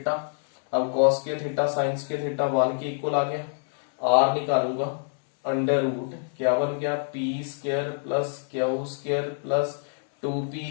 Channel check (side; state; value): right; silent; digital silence